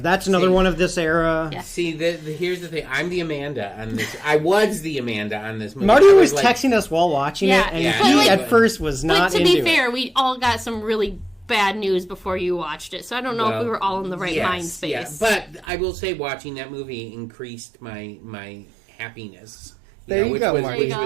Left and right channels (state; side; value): drops out; left; at 15.7 s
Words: another one of this era. Yeah. See, here's the thing. I'm the Amanda on this. I was the Amanda on this movie. Marty was texting us while watching it, and he at first was not into it. But to be fair, we all got some really bad news before you watched it, so I don't know if we were all in the right mind space. Yeah. But I will say, watching that movie increased my happiness. Which